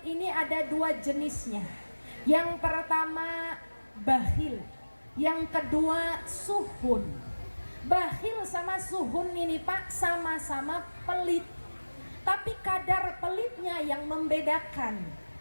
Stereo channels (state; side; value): inverted; both; correlation -1.00